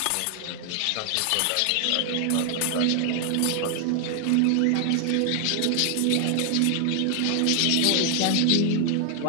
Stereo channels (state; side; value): different; both; correlation 0.00